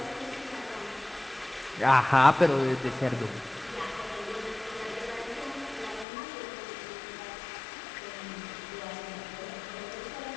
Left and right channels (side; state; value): right; drops out; at 6.1 s